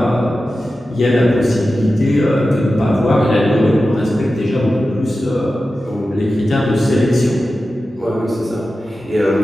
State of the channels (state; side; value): normal; both; correlation 0.93